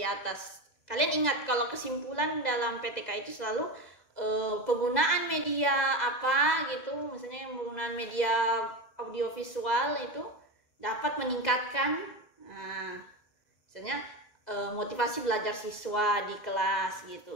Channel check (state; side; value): late; right; 2.0 ms